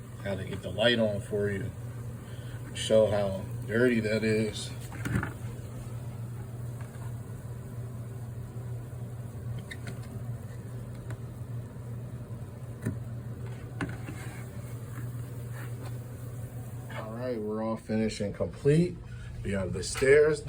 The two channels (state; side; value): identical; both; correlation 1.00